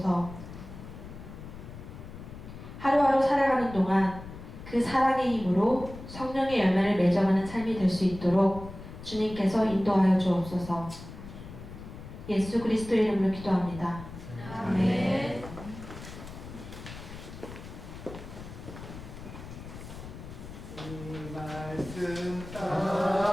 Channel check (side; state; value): left; noise; rumble, 13 dB below the sound